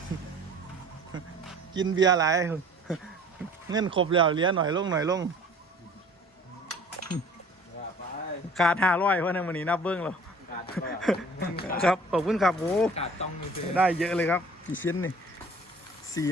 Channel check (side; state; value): both; normal; correlation 0.49